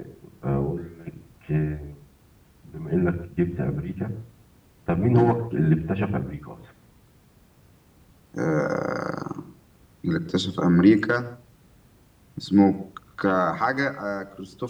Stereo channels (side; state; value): both; identical; correlation 1.00